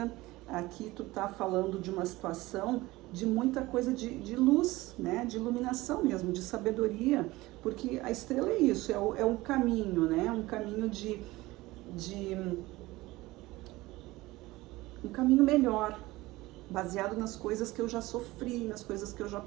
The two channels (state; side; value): quieter; left; 19.5 dB